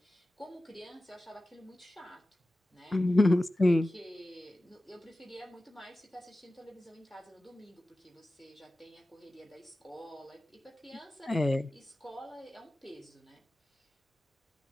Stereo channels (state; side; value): normal; both; correlation 0.95